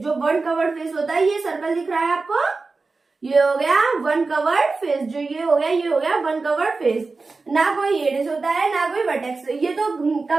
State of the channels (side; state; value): left; quieter; 3.9 dB